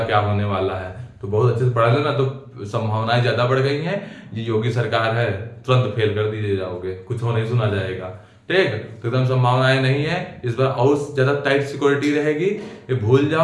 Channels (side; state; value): both; identical; correlation 1.00